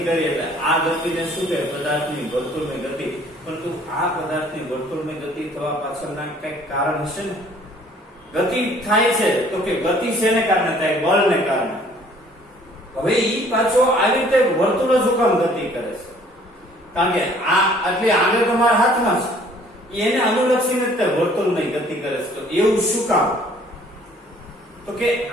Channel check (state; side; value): normal; both; correlation 0.57